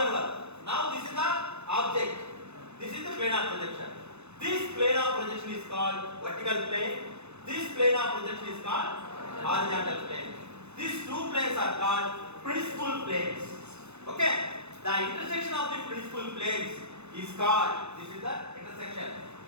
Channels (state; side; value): late; left; 0.81 ms